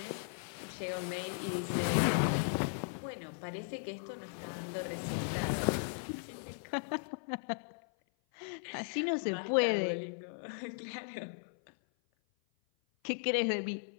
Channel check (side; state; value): right; silent; 53 dB below the other